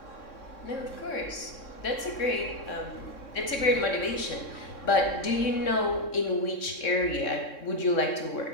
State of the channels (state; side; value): late; right; 3.6 ms